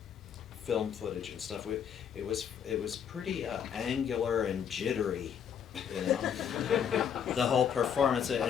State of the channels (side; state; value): right; quieter; 8.1 dB